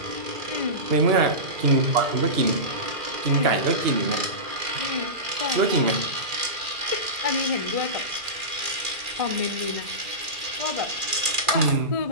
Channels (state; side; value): late; left; 2.4 ms